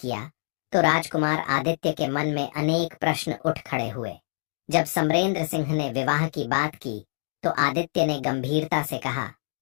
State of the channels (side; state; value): right; silent; digital silence